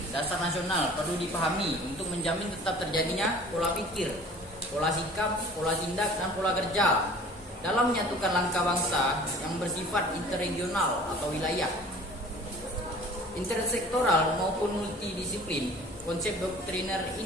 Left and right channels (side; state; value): both; normal; correlation 0.47